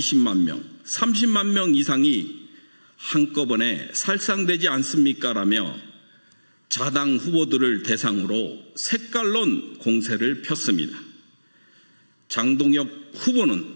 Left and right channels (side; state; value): both; inverted; correlation -1.00